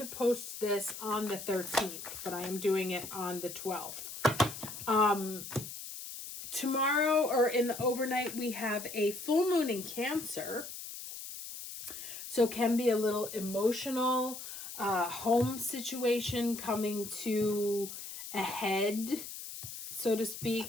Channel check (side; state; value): left; noise; hiss, 10 dB below the sound